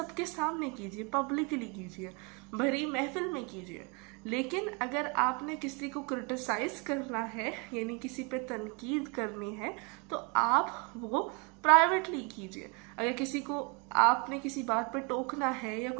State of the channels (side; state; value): left; quieter; 32.0 dB